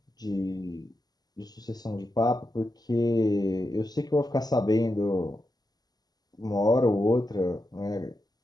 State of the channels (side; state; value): right; late; 0.19 ms